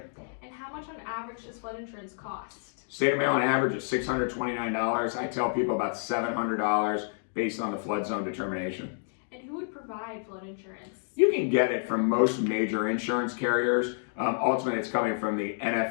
And how much on average does flood insurance cost? State of Maryland average is $629. I tell people about $700 based on the flood zone determination. And who would provide flood insurance? You can get it from most major insurance carriers. Ultimately, it's coming from the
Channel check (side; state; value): right; silent; digital silence